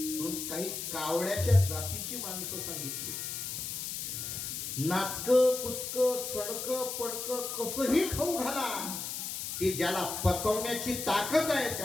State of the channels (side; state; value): left; noise; hiss, 5 dB below the sound